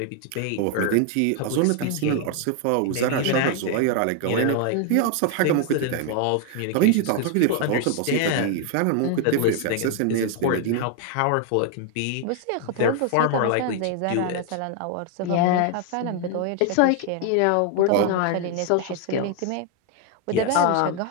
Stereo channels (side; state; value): both; different; correlation 0.00